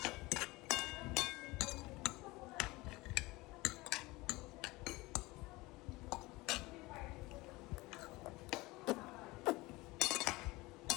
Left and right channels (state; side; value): quieter; right; 21.7 dB